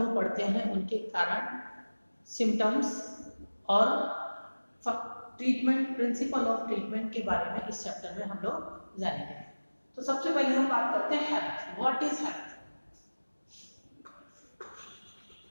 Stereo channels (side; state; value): both; inverted; correlation -1.00